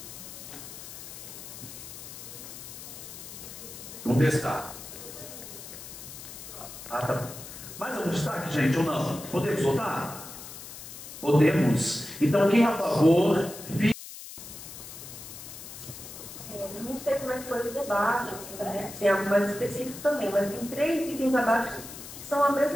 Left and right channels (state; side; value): noise; left; hiss, 12 dB below the sound